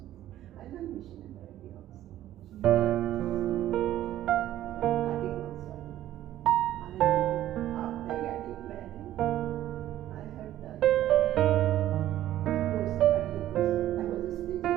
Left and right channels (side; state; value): left; quieter; 13.1 dB